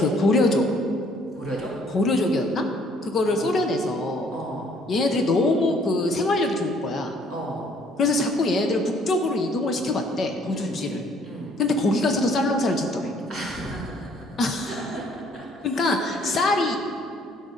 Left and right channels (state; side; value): normal; both; correlation 0.61